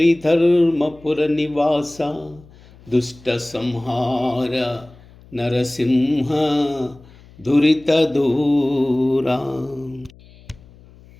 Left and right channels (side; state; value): left; noise; hum, 24 dB below the sound